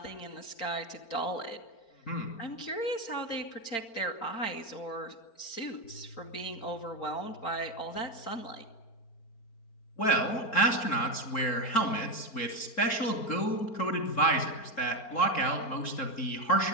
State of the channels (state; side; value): late; right; 4.4 ms